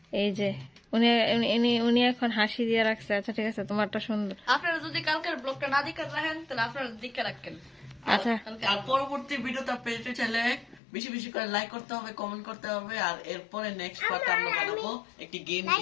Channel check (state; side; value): drops out; right; at 10.8 s